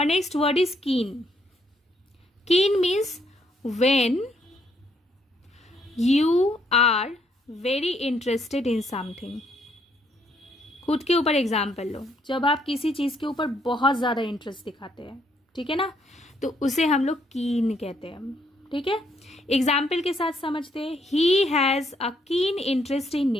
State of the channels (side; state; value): both; normal; correlation 0.71